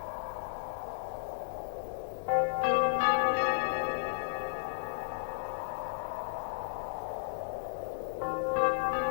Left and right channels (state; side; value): quieter; right; 35.2 dB